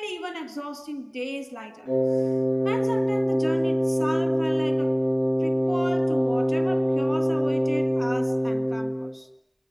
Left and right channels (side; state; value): both; identical; correlation 1.00